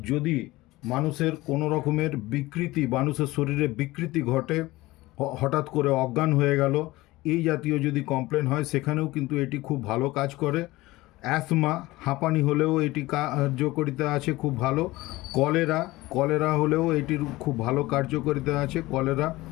যদি মানুষের কোনো রকমের বিকৃতি, মানুষের শরীরে বিকৃতি ঘটে, হঠাৎ করে অজ্ঞান হয়ে গেল, এই জাতীয় যদি কমপ্লেন হয় সেখানেও কিন্তু এটি খুব ভালো কাজ করে। অ্যাসমা, হাঁপানি হলেও এটি কার্যকারিতা আছে খুব ভালো। কলেরা, কলেরা হলেও এটির খুব ভালো কার্যকারিতা আছে। কলেরা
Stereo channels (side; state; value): right; quieter; 19.2 dB